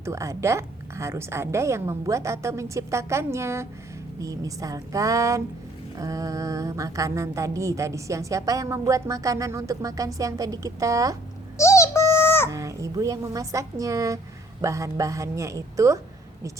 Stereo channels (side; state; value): both; normal; correlation 0.60